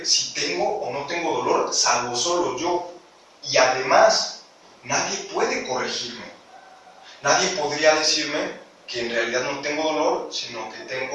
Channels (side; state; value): both; identical; correlation 1.00